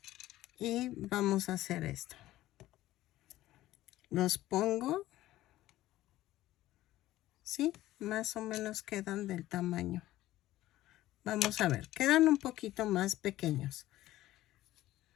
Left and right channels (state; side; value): quieter; right; 15.4 dB